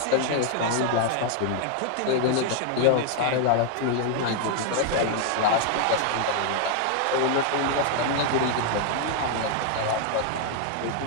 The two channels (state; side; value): different; both; correlation 0.00